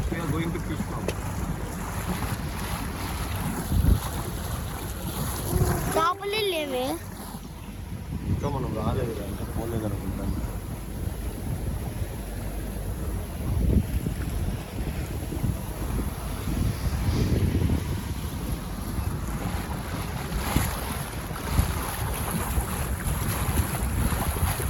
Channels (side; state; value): both; identical; correlation 1.00